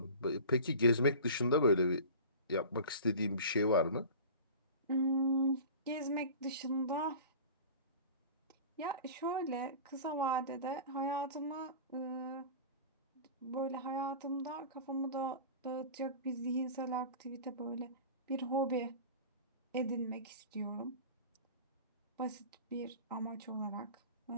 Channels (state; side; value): inverted; both; correlation -0.37